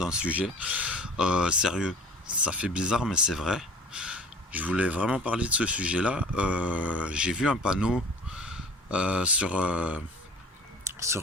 sujet sérieux. Ça fait bizarre, mais c'est vrai. Je voulais vraiment parler de ce sujet-là. J'ai vu un panneau sur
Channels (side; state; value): both; normal; correlation 0.45